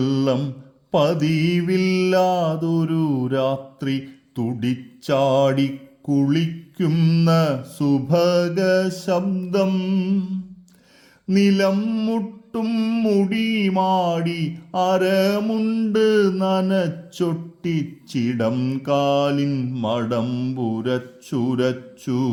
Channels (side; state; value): both; identical; correlation 1.00